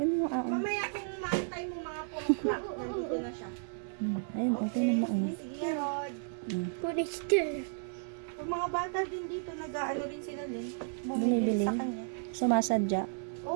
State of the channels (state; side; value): silent; left; digital silence